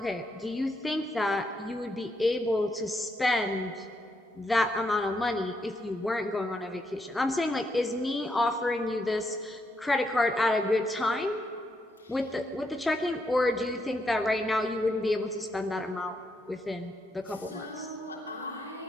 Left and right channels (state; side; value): normal; both; correlation 0.78